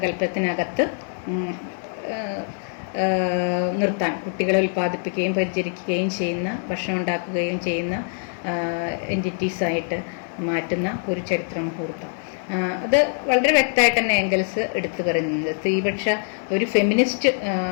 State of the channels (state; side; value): silent; right; 63 dB below the other